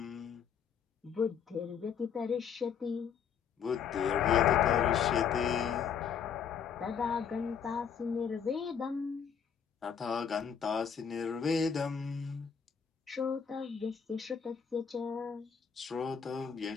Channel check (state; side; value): quieter; right; 7.4 dB